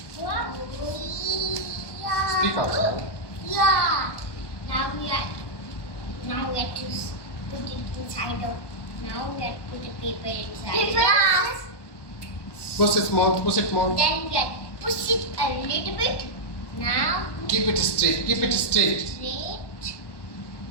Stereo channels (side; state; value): right; late; 1.1 ms